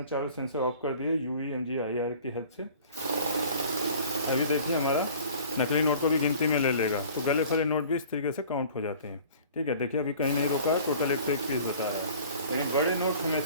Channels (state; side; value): inverted; both; correlation -0.47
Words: चारों सेंसर ऑफ कर दिए UV MG IR की हेल्प से, अभी देखिए हमारा नकली नोट को भी गिनती में ले लेगा। तो गले फले नोट भी इस तरीके से काउंट हो जाते हैं। ठीक है, देखिए अभी कहीं नहीं रुका है, टोटल 101 पीस बता रहा है। लेकिन बड़े नोट